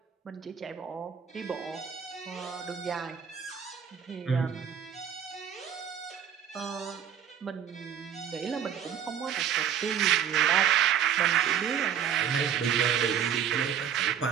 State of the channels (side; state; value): left; quieter; 8.6 dB